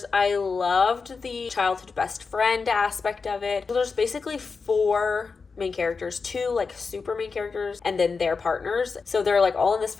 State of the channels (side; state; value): right; quieter; 4.8 dB